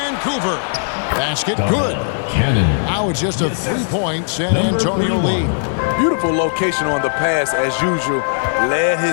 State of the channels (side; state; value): right; silent; 57 dB below the other